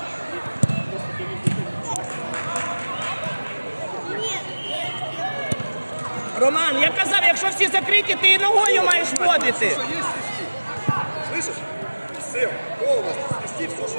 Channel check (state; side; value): inverted; both; correlation -1.00